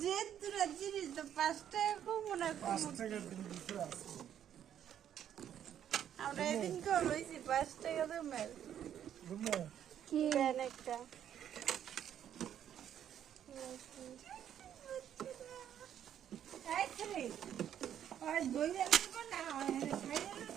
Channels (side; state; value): left; quieter; 9.9 dB